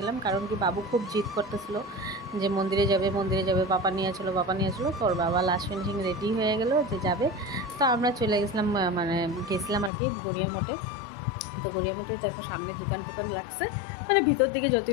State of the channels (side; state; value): right; drops out; at 9.9 s